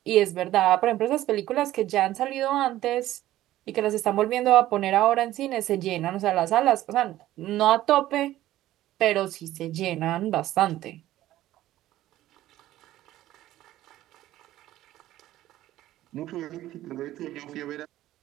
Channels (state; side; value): quieter; left; 14.5 dB